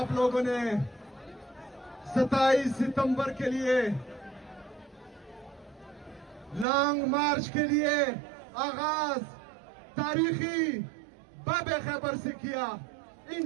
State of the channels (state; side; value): drops out; left; at 6.7 s